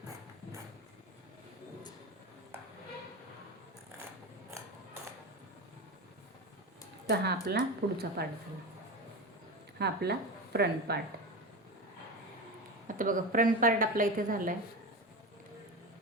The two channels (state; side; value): normal; both; correlation 0.23